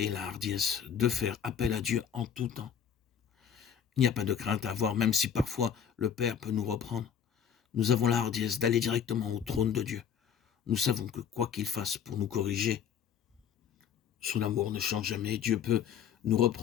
et la hardiesse de faire appel à Dieu en tout temps. Il n'y a pas de crainte à avoir, même si parfois le Père peut nous reprendre. Nous avons la hardiesse d'aller directement au trône de Dieu. Nous savons que quoi qu'il fasse pour nous corriger, son amour ne change jamais. Dieu peut nous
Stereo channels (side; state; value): right; quieter; 8.2 dB